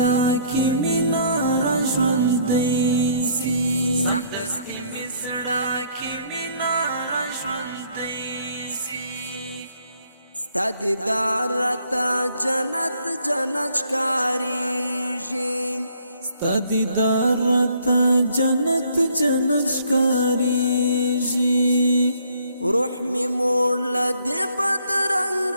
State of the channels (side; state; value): both; inverted; correlation -0.64